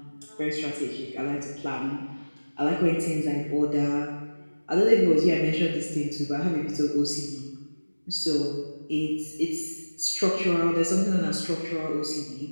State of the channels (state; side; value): inverted; both; correlation -1.00